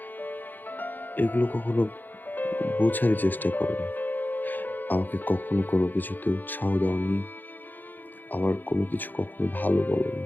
এগুলো কখনো বোঝারই চেষ্টা করো না। আমাকে কখনো কোনো কিছুতে উৎসাহ দাওনি, আমার কোনো কিছু কখনো ভালো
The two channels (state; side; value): late; right; 0.088 ms